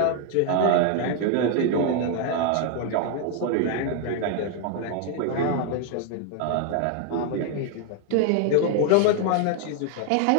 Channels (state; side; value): different; both; correlation 0.00